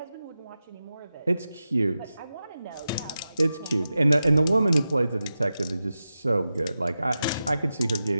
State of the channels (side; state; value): both; inverted; correlation -0.92